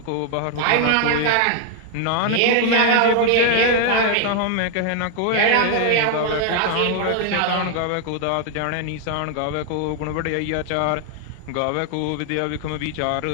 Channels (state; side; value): different; both; correlation 0.00